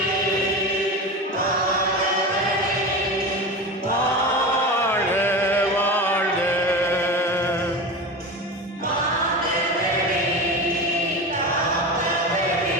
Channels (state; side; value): normal; both; correlation 0.26